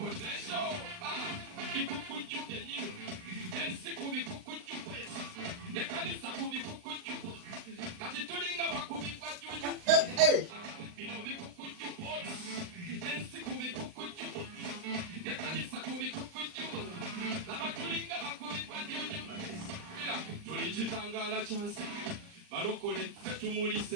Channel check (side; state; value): left; late; 39 ms